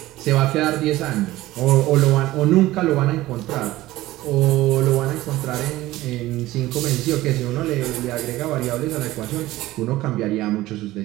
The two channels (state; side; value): quieter; left; 16.9 dB